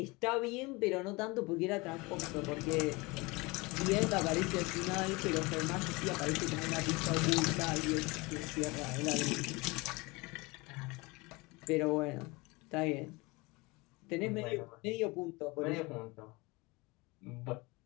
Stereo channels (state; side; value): quieter; right; 24.8 dB